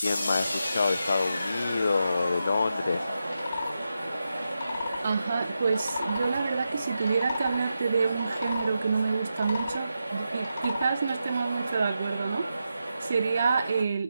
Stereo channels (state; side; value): inverted; both; correlation -0.88